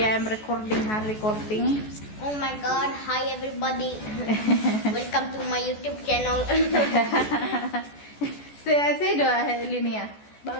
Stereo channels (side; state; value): right; late; 14 ms